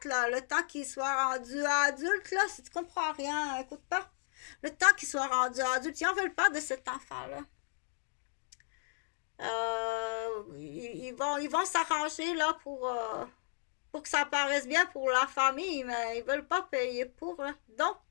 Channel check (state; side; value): silent; right; digital silence